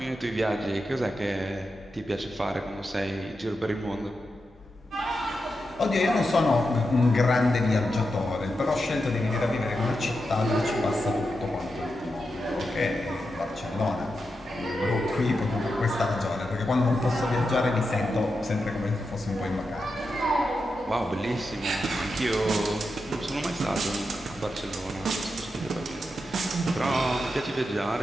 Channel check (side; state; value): both; normal; correlation 0.88